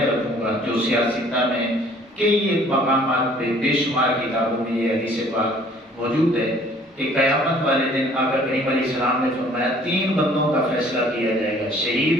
رکھوں گا جو سیاستہ میں کئی مقامات پہ بے شمار کتابوں میں یہ حدیث پاک موجود ہے کہ قیامت والے دن آقا کریم علیہ السلام نے فرمایا 3 بندوں کا فیصلہ کیا جائے گا،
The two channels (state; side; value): normal; both; correlation 0.55